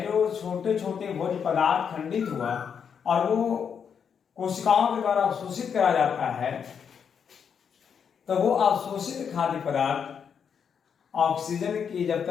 जो छोटे छोटे भोज्य पदार्थ खंडित हुआ और वो कोशिकाओं के द्वारा अवशोषित करा जाता है, तो वो अवशोषित खाद्य पदार्थ ऑक्सीजन की जब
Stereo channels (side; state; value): right; quieter; 7.1 dB